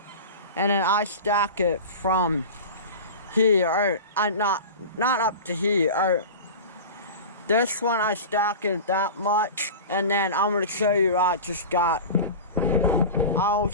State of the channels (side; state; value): both; inverted; correlation -0.31